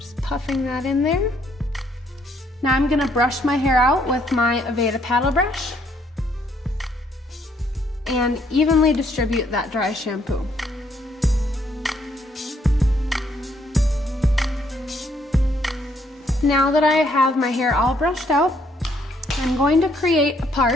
puffing that in there. Now I'm gonna brush my hair out with my Aveda paddle brush and evenly distribute that dry shampoo. Now that I have my hair all brushed out, I'm going to create a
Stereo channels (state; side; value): normal; both; correlation 0.69